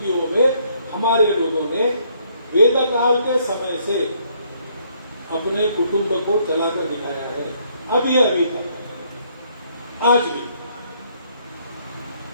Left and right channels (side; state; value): both; inverted; correlation -0.68